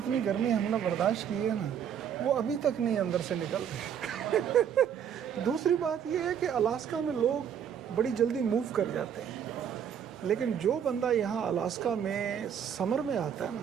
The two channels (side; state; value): left; quieter; 8.5 dB